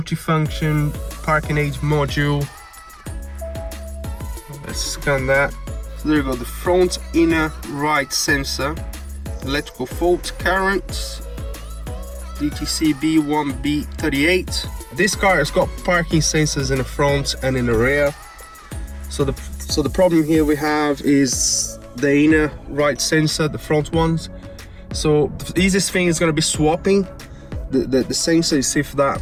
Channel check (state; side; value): identical; both; correlation 1.00